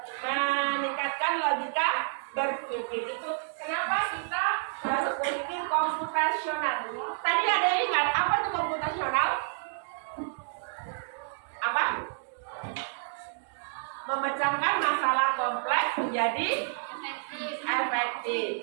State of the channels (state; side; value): silent; left; digital silence